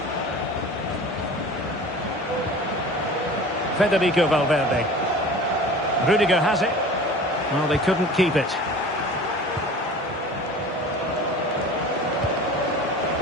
Federico Valverde. Rudiger has it. Well, they couldn't keep it.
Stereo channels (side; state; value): both; normal; correlation 0.40